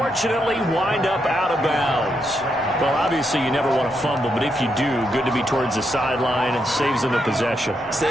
wind up out of bounds. Well, obviously you never want to fumble, but if you do, good to be towards the sideline and saves them the possession.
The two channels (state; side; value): normal; both; correlation 0.81